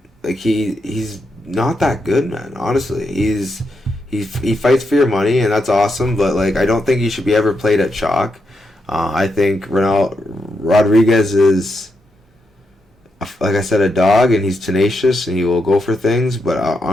he's not that good, man. Honestly, he fights for your money, and that's awesome. But like, I don't think he should be ever played at chalk. I think Rodriguez is, like I said, a dog, and he's tenacious, and he will go for things. But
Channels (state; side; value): normal; both; correlation 0.83